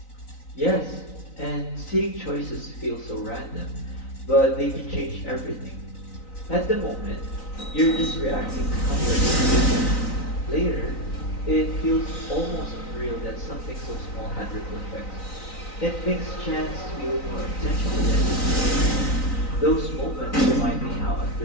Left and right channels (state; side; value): late; right; 3.9 ms